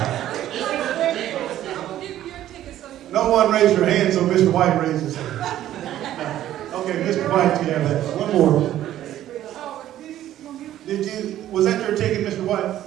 No one raised your hand, so Mr. White raised his hand. Okay, Mr. White, you have that. One more. Was that your ticket, Mr. White?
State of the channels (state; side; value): quieter; left; 12.7 dB